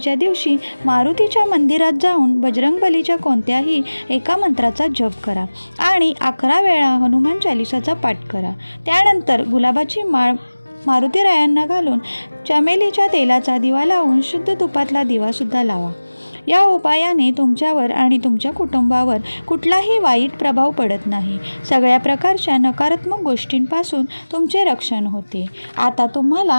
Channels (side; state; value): both; inverted; correlation -1.00